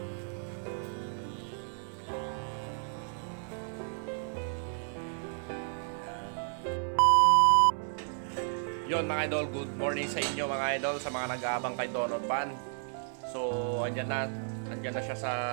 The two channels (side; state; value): left; silent; digital silence